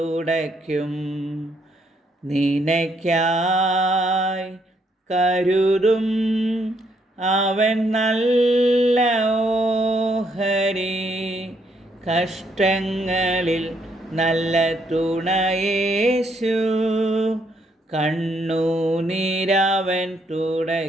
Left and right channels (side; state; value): both; normal; correlation 0.73